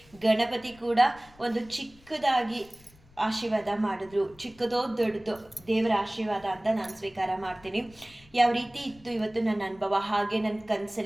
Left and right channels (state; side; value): noise; left; rumble, 26 dB below the sound